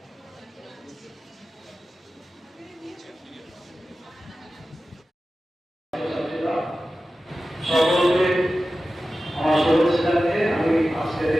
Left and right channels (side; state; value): both; normal; correlation 0.94